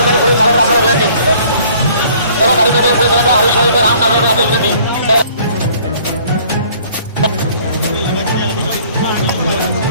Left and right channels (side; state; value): both; inverted; correlation -0.56